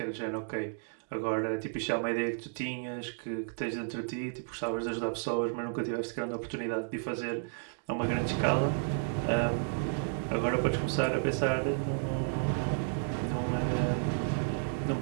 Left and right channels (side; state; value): left; silent; digital silence